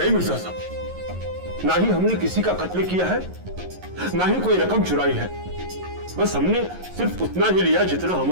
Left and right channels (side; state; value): left; late; 11 ms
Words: मिर्जा साहब, ना ही हमने किसी का कत्ल किया है, ना ही कोई रकम चुराई है। बस हमने सिर्फ उतना ही लिया जितना